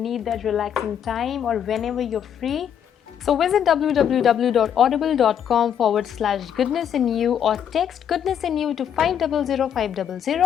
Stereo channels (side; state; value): right; quieter; 8.9 dB